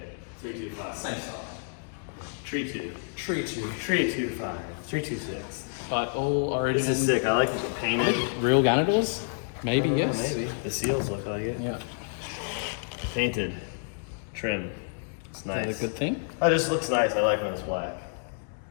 325. Same size. Tree 2. Tree 2. 325. 326. But all Origin. This is sick. I like the painted. Real Ganadors? Maybe, yes. Maybe. The seals look like it. Yeah. Painted. Trim. It's Is that nice. a good thing? Oh, it just looks nice. I like when it's black.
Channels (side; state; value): right; silent; digital silence